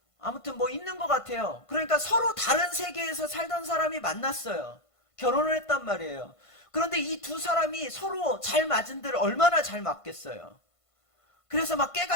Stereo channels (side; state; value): right; late; 1.5 ms